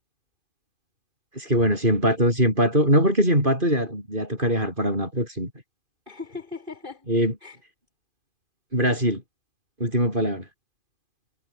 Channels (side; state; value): left; late; 2.5 ms